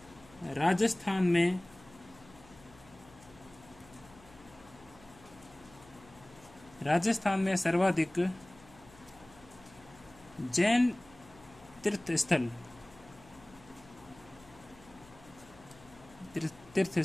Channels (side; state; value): left; noise; hum, 23 dB below the sound